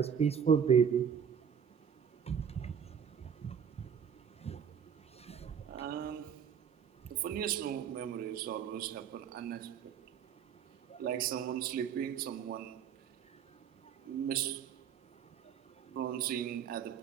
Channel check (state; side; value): quieter; left; 7.8 dB